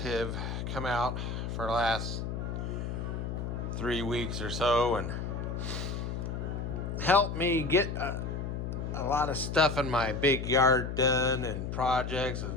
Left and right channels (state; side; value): noise; left; hum, 4 dB below the sound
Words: come out for the last 3 weeks or so and help me get a lot of stuff in my big yard done and projects